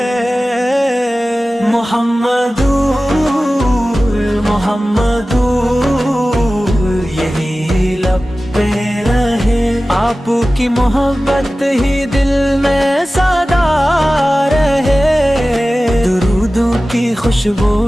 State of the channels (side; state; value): both; normal; correlation 0.96